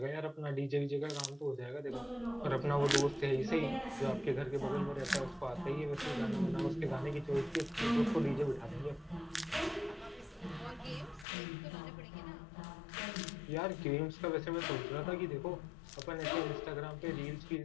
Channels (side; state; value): right; drops out; at 11.2 s